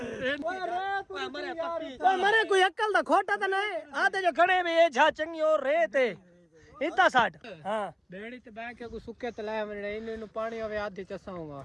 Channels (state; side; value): identical; both; correlation 1.00